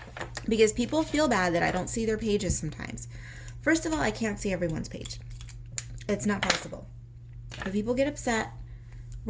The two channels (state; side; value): identical; both; correlation 1.00